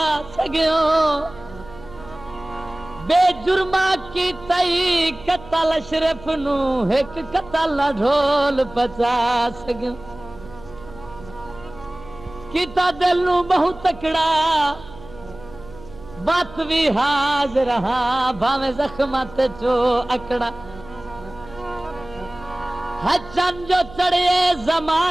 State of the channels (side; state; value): right; noise; hum, 18 dB below the sound